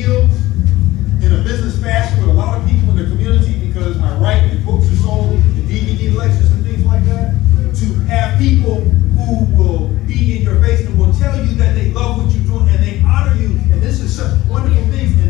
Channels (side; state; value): right; quieter; 17.4 dB